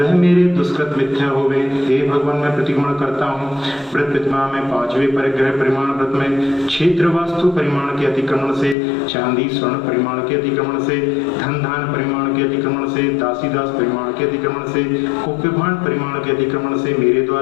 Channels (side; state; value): right; drops out; at 8.8 s